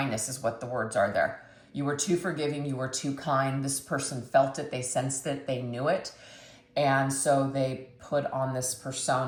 is what the words are there. You were too forgiving. You were too kind. This person felt it. They sensed it. They knew it. And so they put on this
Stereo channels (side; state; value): both; identical; correlation 1.00